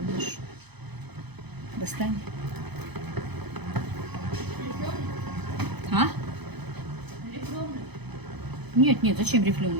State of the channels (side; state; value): left; late; 0.98 ms